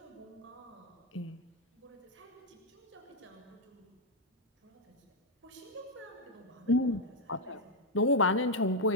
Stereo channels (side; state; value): both; normal; correlation 0.01